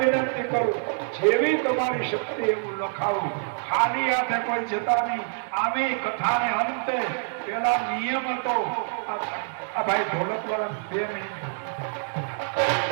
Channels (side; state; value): left; silent; digital silence